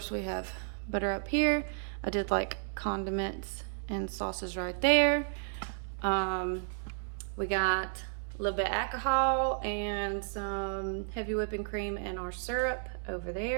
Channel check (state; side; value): silent; left; digital silence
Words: we have butter up here. I did like condiments and sauces right there. We got a little bit of alcohol and some heavy whipping cream and our syrup over